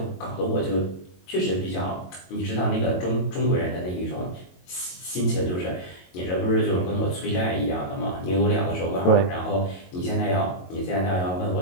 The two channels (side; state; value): right; late; 22 ms